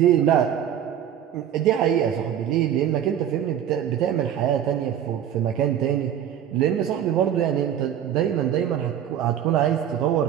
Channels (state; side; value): quieter; left; 9.8 dB